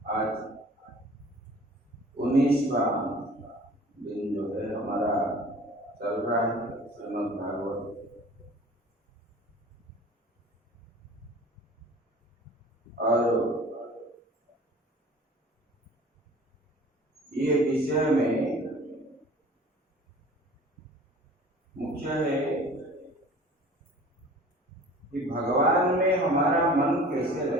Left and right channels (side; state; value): both; normal; correlation 0.45